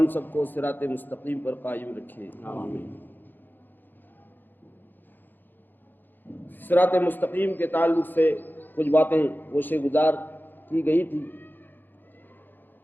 سب کو صراط مستقیم پر قائم رکھے آمین. صراط مستقیم کے تعلق سے کچھ باتیں گوشے گزار کی گئی تھی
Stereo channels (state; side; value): late; right; 0.091 ms